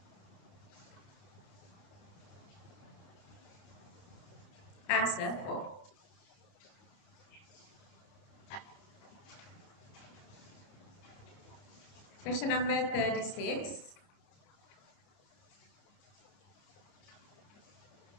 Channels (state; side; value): late; right; 29 ms